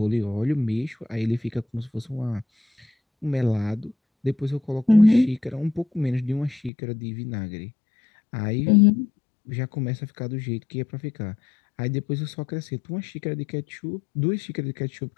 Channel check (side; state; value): right; drops out; at 6.7 s